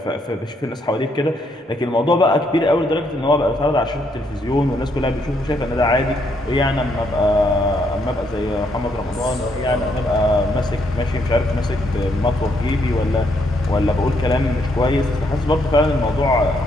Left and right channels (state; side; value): normal; both; correlation 0.74